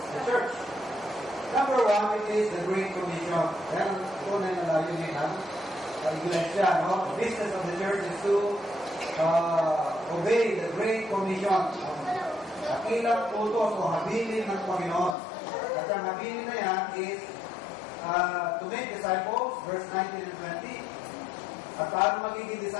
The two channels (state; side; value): drops out; right; at 15.2 s